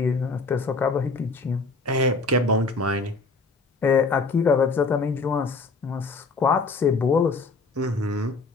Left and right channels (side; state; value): right; quieter; 3.9 dB